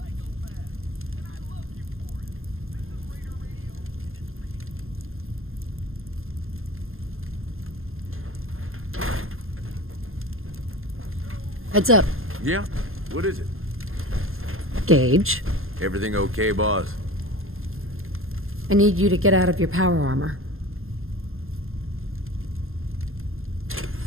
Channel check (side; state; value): left; late; 0.61 ms